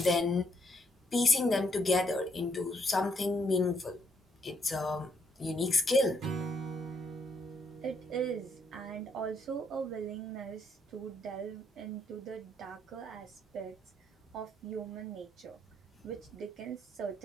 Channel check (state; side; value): normal; both; correlation 0.74